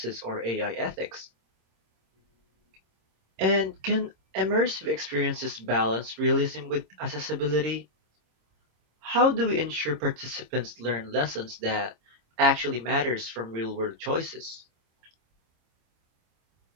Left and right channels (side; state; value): left; late; 26 ms